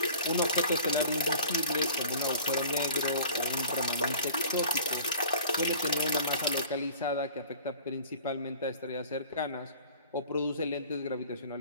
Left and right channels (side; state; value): both; inverted; correlation -0.46